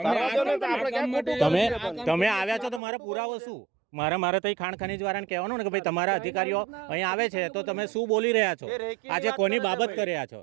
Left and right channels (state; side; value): drops out; left; at 2.8 s